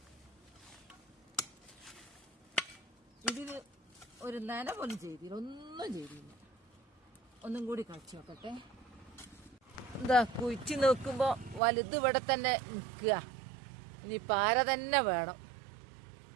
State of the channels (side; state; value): left; drops out; at 11.6 s